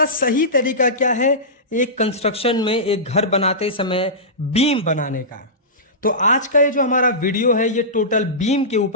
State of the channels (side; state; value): both; normal; correlation -0.18